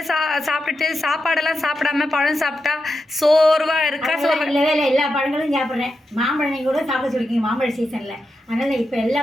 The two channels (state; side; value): normal; both; correlation 0.88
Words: சாப்பிட்டுட்டு சாப்பாடெல்லாம் சாப்பிடாம பழம் சாப்பிட்டா சோர்வாக இருக்கா? இல்லவே இல்லை, எல்லா பழங்களும் சாப்பிட்றேன். மாம்பழம் நீங்கள் கூட சாப்பிட சொல்லிருக்கீங்க மாம்பழ சீசனில். அதனால் இப்போ எல்லா